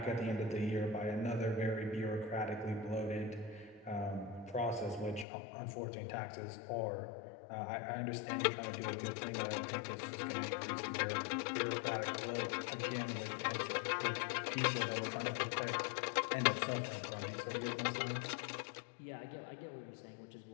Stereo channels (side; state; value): right; drops out; at 5.2 s